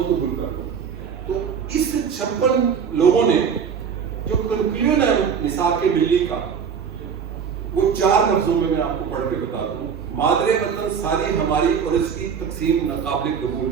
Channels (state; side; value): quieter; left; 6.9 dB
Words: قبول کر دو. تو اس 56 لوگوں نے جو کنکلوژن ہے میثاق ملی کا، وہ 4 لفظوں میں آپ کو پڑھ کے بتا دوں. مادر وطن ساری ہماری اور اس کی تقسیم ناقابل قبول.